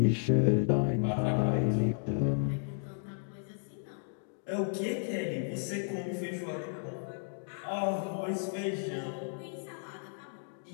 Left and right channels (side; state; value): right; silent; digital silence